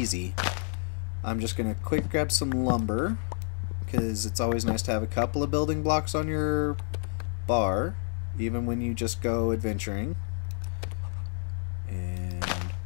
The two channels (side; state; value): right; silent; 58 dB below the other